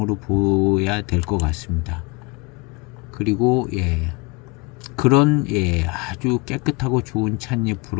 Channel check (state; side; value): quieter; right; 27.9 dB